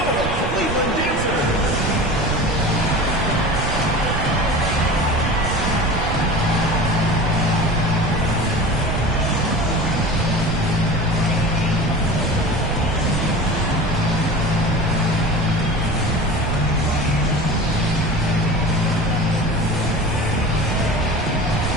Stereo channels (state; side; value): noise; right; rumble, 3 dB below the sound